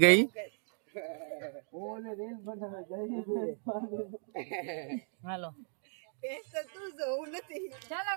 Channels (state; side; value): silent; left; 54 dB below the other